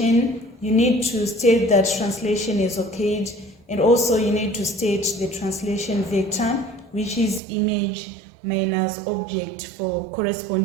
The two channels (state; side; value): drops out; left; at 7.4 s